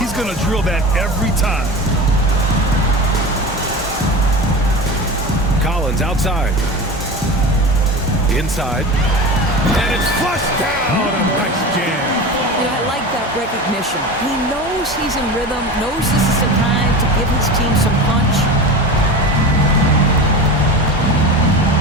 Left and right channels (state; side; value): normal; both; correlation 0.29